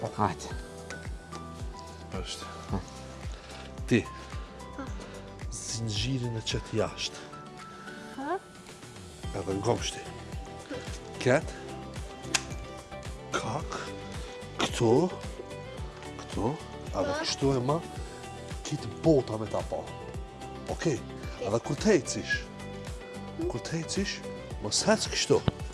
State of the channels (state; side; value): identical; both; correlation 1.00